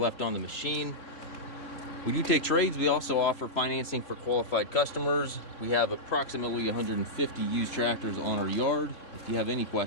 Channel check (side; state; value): right; late; 3.6 ms